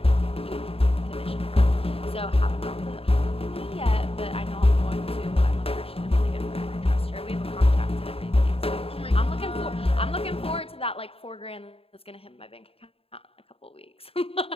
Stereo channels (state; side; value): late; right; 0.27 ms